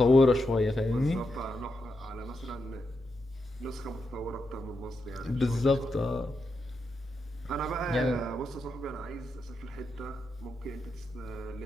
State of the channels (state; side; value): normal; both; correlation 0.85